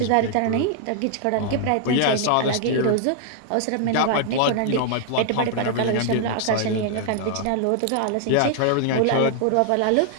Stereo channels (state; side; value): different; both; correlation 0.00